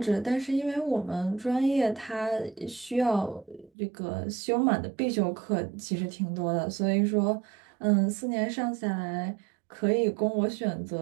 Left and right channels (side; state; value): left; drops out; at 3.7 s